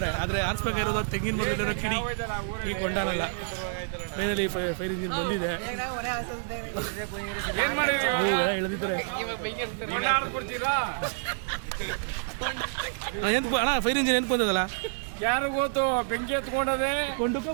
ಆದ್ರೆ ಹಾರಿಸ್ಬೇಕಾಗಿರೋದು ತೆಂಗಿನ ಮರದಲ್ಲಿರೋ ಕಿಡಿ, ಈ ಕೊಂಡನಲ್ಲ. ಫೈನಲಿ ಫೈರ್ ಇಂಜಿನ್ ಬಂದಿದೆ. ಎಲ್ಲ ಎಳೆದಿದ್ದಾರೆ. ಅಣ್ಣ ಫೈರ್ ಇಂಜಿನ್ ಏನ್ ಬಂದದಲ್ಲ ಯಾರು ಗೊತ್ತು ಬೆಂಕಿ ಎತ್ಕೊಂಡದೆ ಕೊಂಡುಕ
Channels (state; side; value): silent; left; digital silence